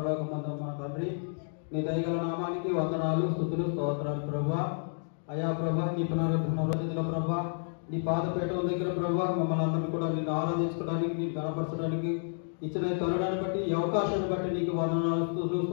మా తండ్రి, నీ దయగల నామానికి వందనాలు, స్తుతులు, స్తోత్రాలు ప్రభా. అయా ప్రభా, నీ పునరుద్ధరణ ప్రభా, నీ పాదపీఠం దగ్గర ప్రభా మమ్మల్ని అందరినీ కూడా నిన్ను ఆరాధించుకోవడానికి, నీకు గణపరచడానికి ఇచ్చిన తరుణాన్ని బట్టి, ఈ అవకాశాన్ని బట్టి నీకు వందనాలు, స్తుతులు,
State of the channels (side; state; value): right; silent; digital silence